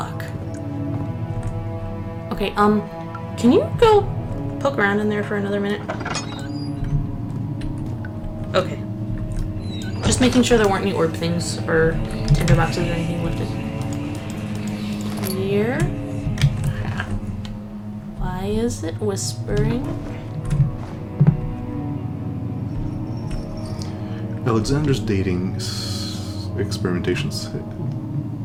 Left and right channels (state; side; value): identical; both; correlation 1.00